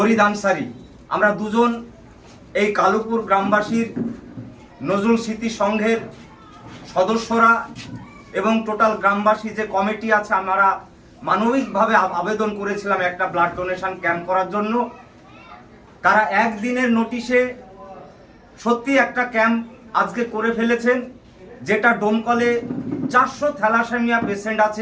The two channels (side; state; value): both; identical; correlation 1.00